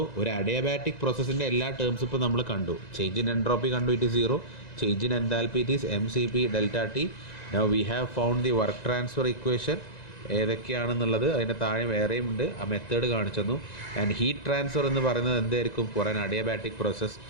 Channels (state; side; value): late; right; 1.9 ms